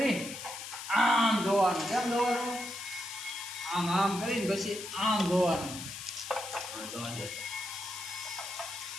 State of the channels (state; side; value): noise; left; hiss, 9 dB below the sound